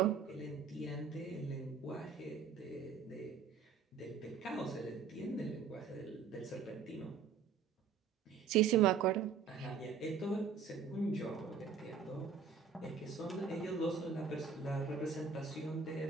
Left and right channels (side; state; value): left; quieter; 5.9 dB